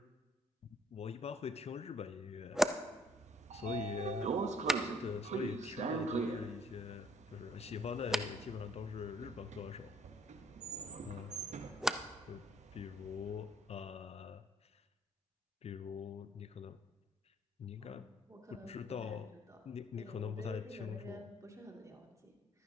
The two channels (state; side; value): normal; both; correlation 0.63